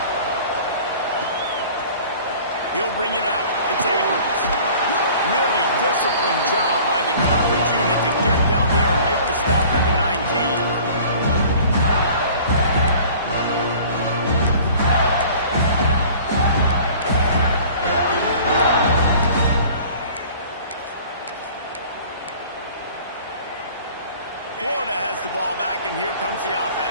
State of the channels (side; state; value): both; inverted; correlation -0.47